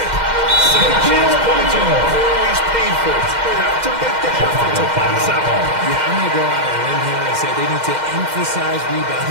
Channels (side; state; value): left; late; 2.1 ms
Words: Second chance points are always painful. Have to make the effort to pass out. Yeah, I'm going to go out on a limb here and say they need to emphasize